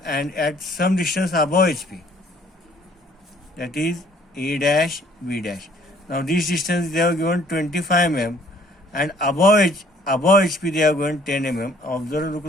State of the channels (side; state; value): both; normal; correlation 0.60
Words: at some distance above HP, that is A dash, B dash. Now this distance they have given 25 mm, and above HP they have given 10 mm. Observe,